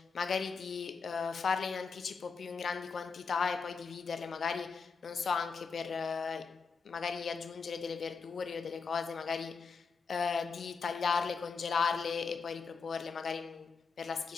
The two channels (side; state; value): right; quieter; 5.2 dB